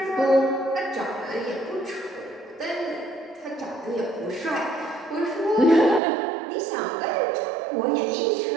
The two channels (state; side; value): drops out; left; at 6.0 s